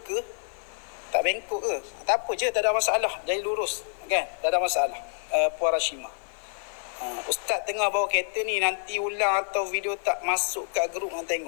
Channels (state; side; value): silent; right; 60 dB below the other